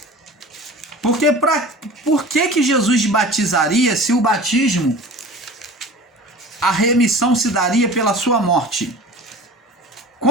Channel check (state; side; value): normal; both; correlation 0.39